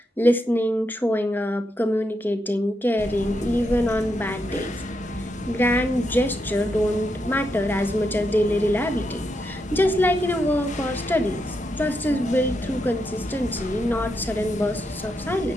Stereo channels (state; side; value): normal; both; correlation 0.82